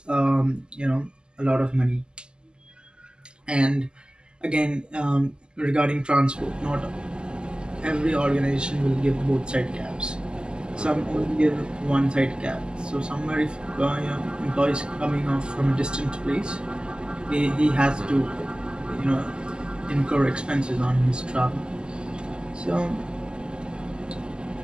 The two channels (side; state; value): left; late; 0.048 ms